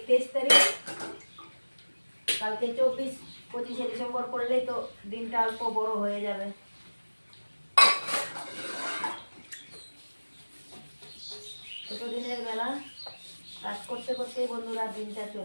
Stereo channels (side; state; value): both; inverted; correlation -1.00